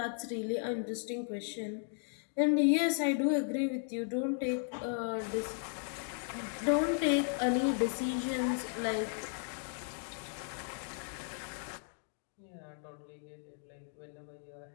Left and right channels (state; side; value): silent; right; 54 dB below the other